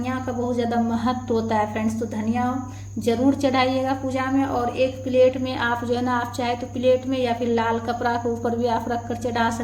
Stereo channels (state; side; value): identical; both; correlation 1.00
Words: का बहुत ज़्यादा महत्व होता है फ्रेंड्स, तो धनिया जरूर चढ़ाइएगा पूजा में। और एक प्लेट में आप जो है ना, आप चाहे तो प्लेट में या फिर लाल कपड़ा के ऊपर भी आप रख कर चढ़ा